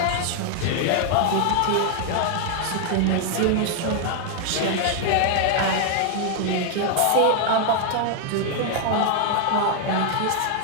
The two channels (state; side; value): different; both; correlation 0.00